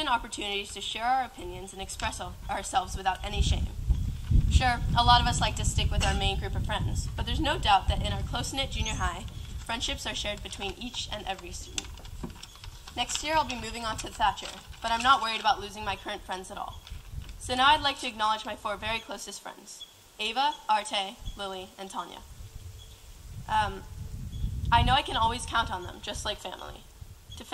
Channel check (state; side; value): identical; both; correlation 1.00